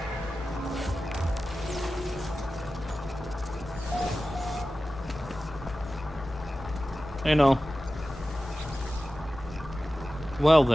Hey, Null. Well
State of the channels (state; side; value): normal; both; correlation 0.95